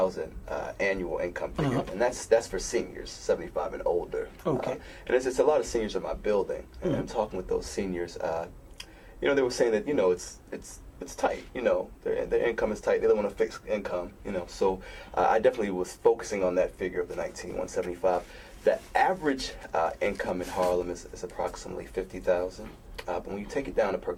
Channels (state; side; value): identical; both; correlation 1.00